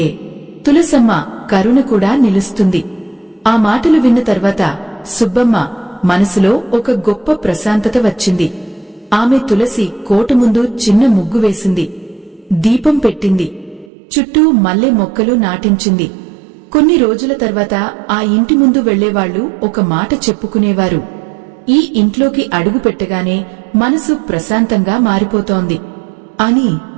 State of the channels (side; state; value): left; drops out; at 13.9 s